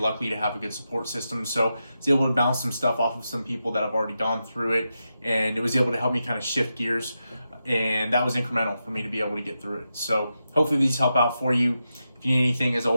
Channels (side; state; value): both; inverted; correlation -0.88